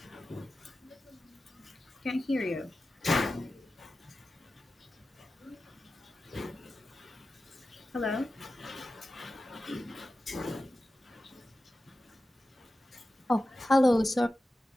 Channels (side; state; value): both; normal; correlation 0.93